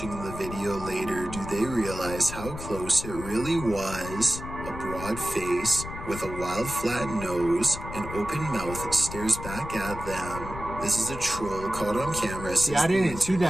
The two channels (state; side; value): noise; left; rumble, 10 dB below the sound